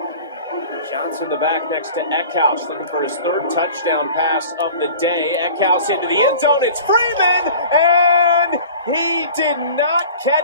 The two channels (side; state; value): both; inverted; correlation -0.41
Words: Johnson the back next to Eckhouse, looking for his 3rd touchdown pass of the day. Eckhouse into the end zone. It's Freeman, and he did not